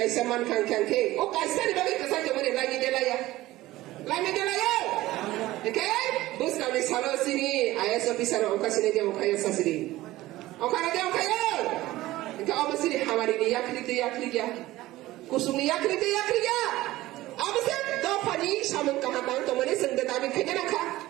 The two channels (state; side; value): quieter; left; 17.0 dB